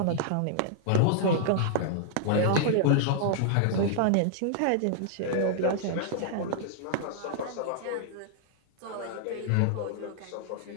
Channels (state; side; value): different; both; correlation -0.01